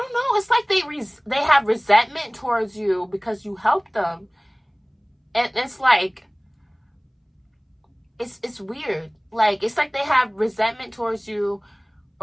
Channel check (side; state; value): both; identical; correlation 1.00